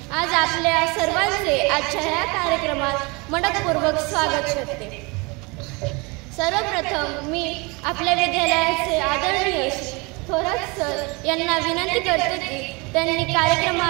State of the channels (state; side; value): quieter; left; 27.7 dB